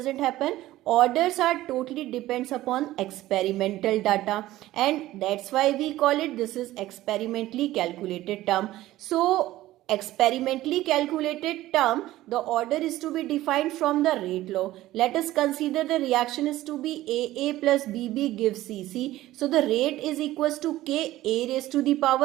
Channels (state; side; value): quieter; left; 15.7 dB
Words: happen. Orders are totally depends upon experimental data, and that's why we call it, this is experimentally calculated term. So experimentally calculated term, the order is to be defined from the rate law. Let us consider the reaction is to be AA plus BB gives CC. So the rate is equals to K, A raised to the